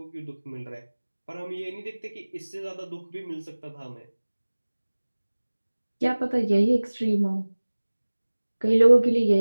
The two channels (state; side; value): inverted; both; correlation -1.00